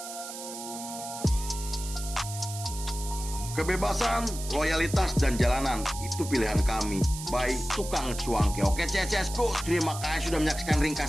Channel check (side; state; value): right; noise; hiss, 10 dB below the sound